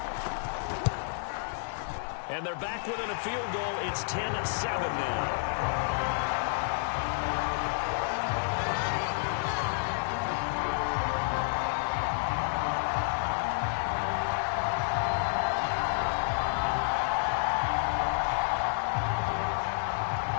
And they're back within a field goal. It's 10-7 now.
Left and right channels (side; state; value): right; silent; digital silence